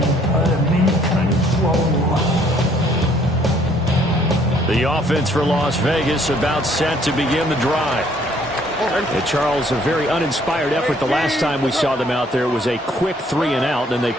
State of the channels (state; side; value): normal; both; correlation 0.63